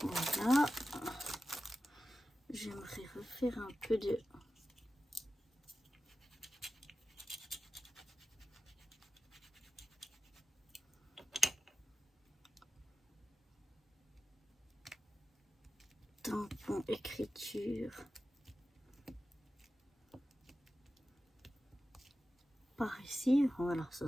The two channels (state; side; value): normal; both; correlation 0.93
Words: voilà, j'aimerais refaire un peu de tampon écriture par ici. Voilà, ça